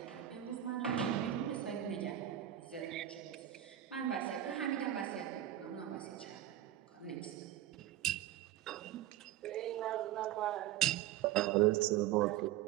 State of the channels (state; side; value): quieter; left; 12.4 dB